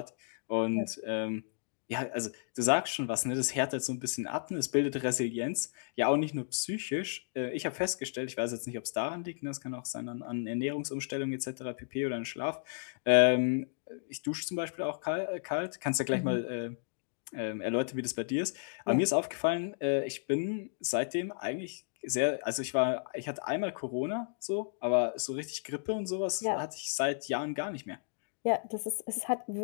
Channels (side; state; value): right; silent; digital silence